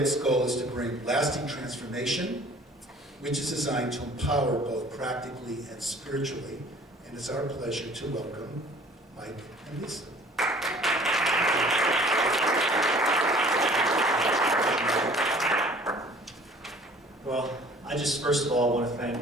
goal is to bring lasting transformation, which is designed to empower both practically and spiritually. And it's our pleasure to welcome Mike and Lisa. Well, I just first of all want to thank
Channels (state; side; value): normal; both; correlation 0.51